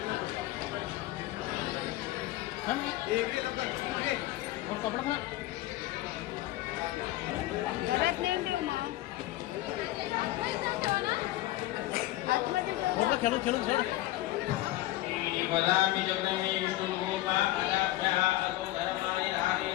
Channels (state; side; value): quieter; right; 16.3 dB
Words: कपडा पण घरात नेऊन ठेव मग. खेळून खेळून खेळ. वदामि जगन्मे विष्णुरूपा अदाभ्यः अतो धर्माणि